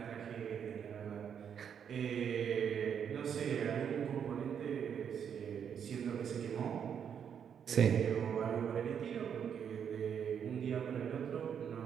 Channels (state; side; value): quieter; left; 7.9 dB